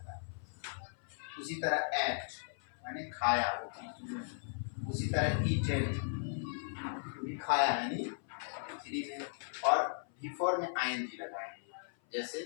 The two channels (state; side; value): silent; right; 53 dB below the other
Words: है। उसी तरह एट माने खाया, उसी तरह ईटेड भी खाया यानी V3 में, और V4 में ING लगाएंगे जैसे